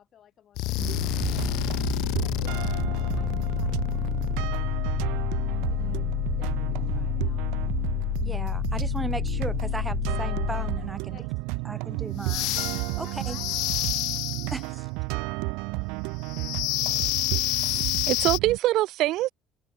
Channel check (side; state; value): both; normal; correlation 0.19